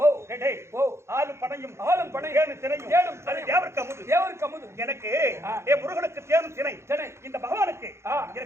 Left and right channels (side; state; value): left; late; 0.13 ms